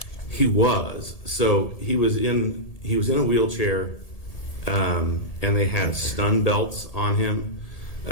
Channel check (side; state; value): right; late; 1.7 ms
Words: He was. So he was in a wheelchair, and they had stun belts on him,